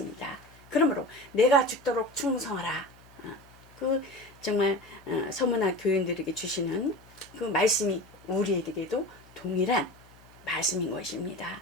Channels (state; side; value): noise; left; hum, 25 dB below the sound